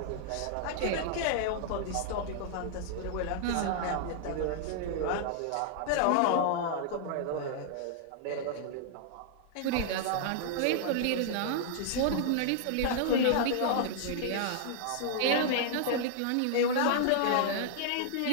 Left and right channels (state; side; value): different; both; correlation -0.01